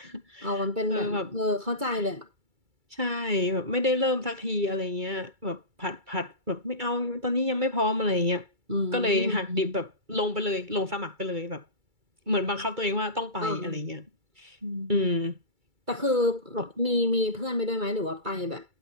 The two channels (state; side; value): late; left; 2.3 ms